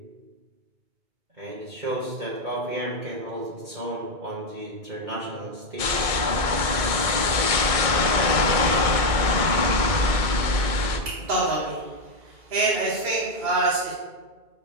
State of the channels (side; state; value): left; late; 2.2 ms